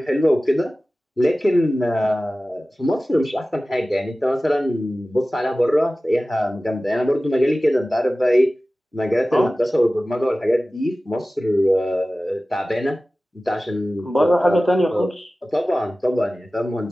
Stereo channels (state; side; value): normal; both; correlation 0.96